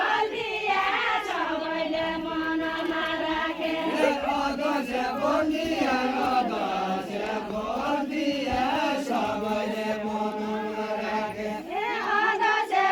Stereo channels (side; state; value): both; identical; correlation 1.00